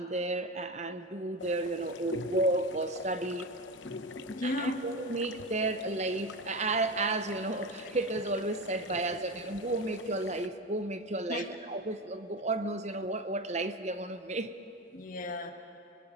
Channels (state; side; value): normal; both; correlation 0.22